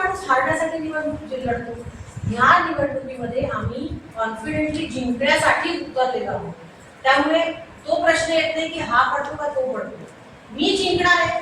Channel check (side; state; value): both; identical; correlation 1.00